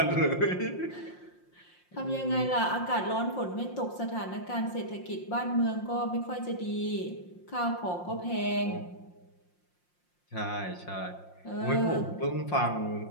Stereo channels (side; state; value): right; late; 5.7 ms